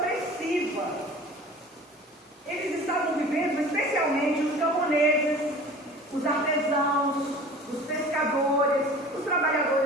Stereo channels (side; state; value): both; normal; correlation 0.42